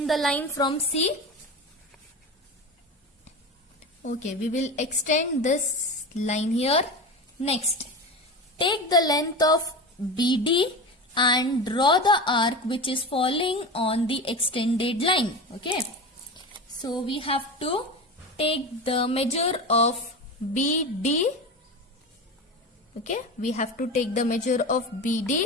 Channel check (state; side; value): normal; both; correlation 0.26